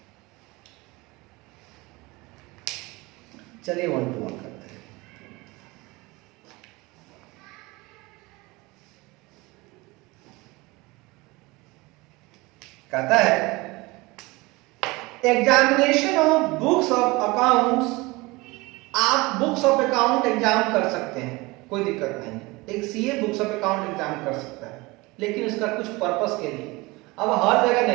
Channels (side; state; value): left; quieter; 23.0 dB